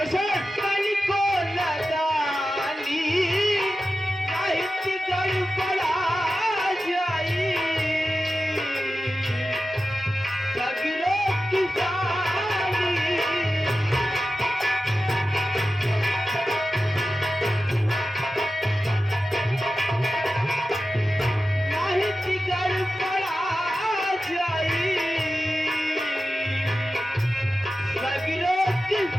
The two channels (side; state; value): both; normal; correlation 0.93